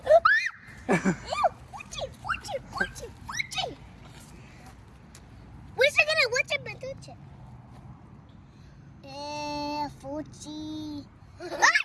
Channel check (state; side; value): identical; both; correlation 1.00